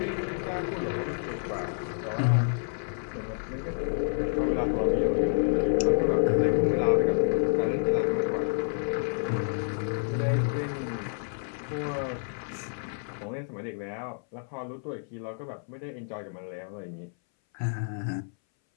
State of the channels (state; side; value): silent; right; 59 dB below the other